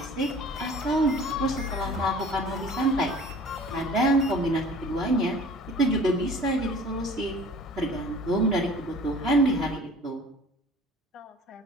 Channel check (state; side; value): normal; both; correlation 0.46